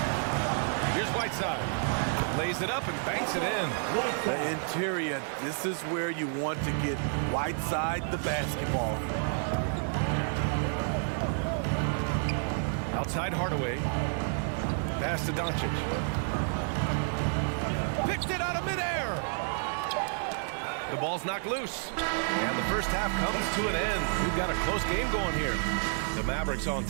Here's Whiteside. Lays it up and banks it in. The interior, this is where you want to get Whiteside the basketball. Outside Hardaway. Pass to Doncic. Picked it out of midair. The ball's knocked loose. And the first half comes to an end. We've got a close game going here. The Mavericks on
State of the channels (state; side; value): silent; left; 58 dB below the other